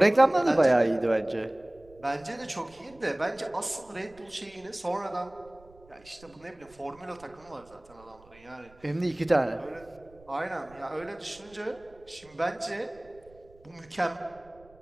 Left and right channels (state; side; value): noise; right; rumble, 26 dB below the sound